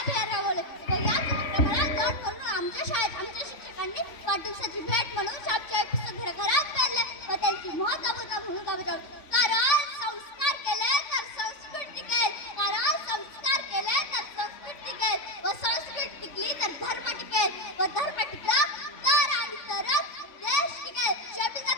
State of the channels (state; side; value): late; right; 3.5 ms